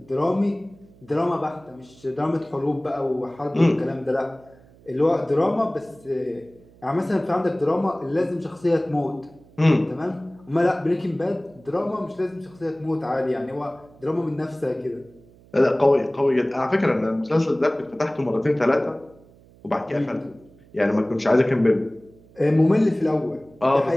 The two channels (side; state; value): right; noise; hum, 26 dB below the sound